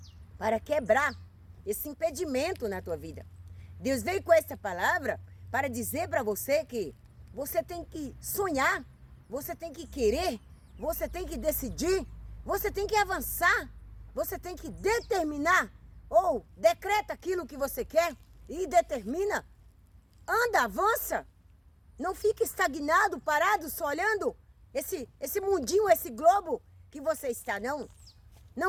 para quebrar esse impedimento na tua vida. Deus veio com essa palavra para dizer para você que você tem que sonhar, você tem que querer, você tem que decidir, você tem que avançar, você tem que determinar ou decreta aquilo que você quer e determina. Anda, avança. Não fique estagnado, parado, só olhando esse mundinho, esse globo que você está, não.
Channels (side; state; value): both; identical; correlation 1.00